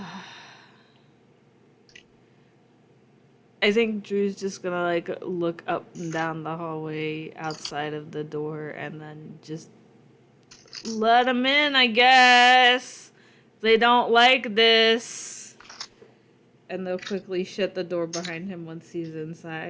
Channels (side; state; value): both; identical; correlation 1.00